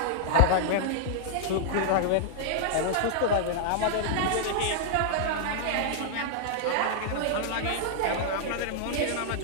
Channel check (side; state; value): both; different; correlation -0.01